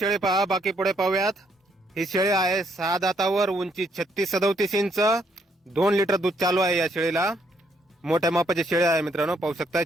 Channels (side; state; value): both; normal; correlation 0.72